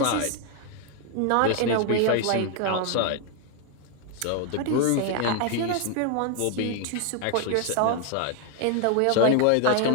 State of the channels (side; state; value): both; different; correlation 0.01